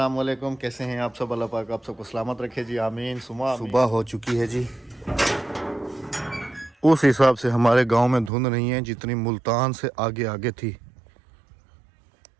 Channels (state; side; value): drops out; left; at 8.3 s